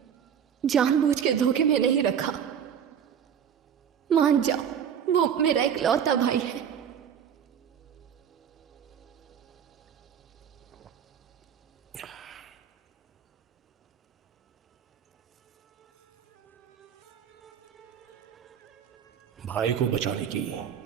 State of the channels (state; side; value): quieter; left; 8.3 dB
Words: जानबूझ के धोखे में नहीं रखा। मान जाओ, वो मेरा इकलौता भाई है। भाई को बचाने की